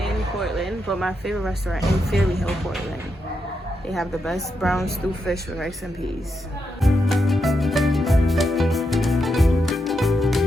Portland, but my favorite restaurant in Fairley Hill, Portland. They have the best brown stew fish with rice and peas.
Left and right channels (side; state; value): both; normal; correlation 0.83